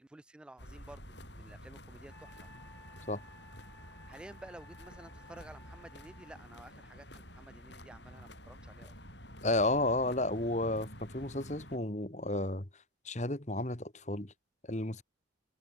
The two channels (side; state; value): both; normal; correlation 0.14